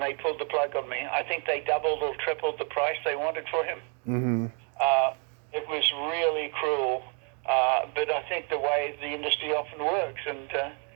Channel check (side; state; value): left; quieter; 38.7 dB